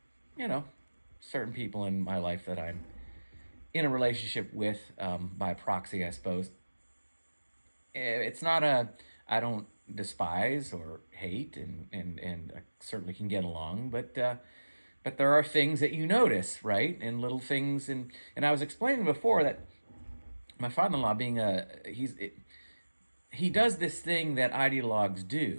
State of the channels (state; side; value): inverted; both; correlation -1.00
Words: certain people in my life that I'm in a relationship with, by proxy, I suppose. It's not I don't despise or hate, and I certainly can get along, but there are things that you notice, right? And little things, and I was explaining before that my father-in-law, being he does this thing that ideologues